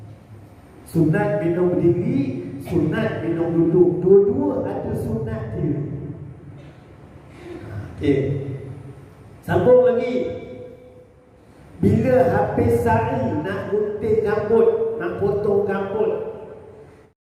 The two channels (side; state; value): both; identical; correlation 1.00